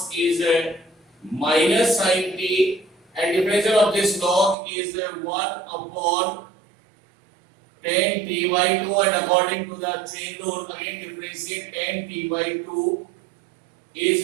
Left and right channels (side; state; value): left; drops out; at 4.5 s